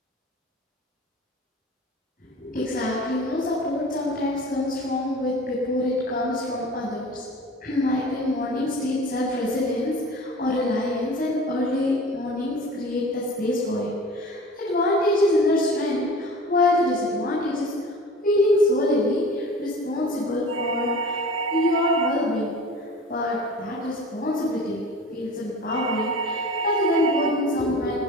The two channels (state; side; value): normal; both; correlation 0.40